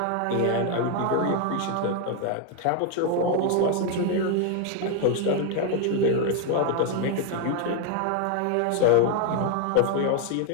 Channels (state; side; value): different; both; correlation 0.00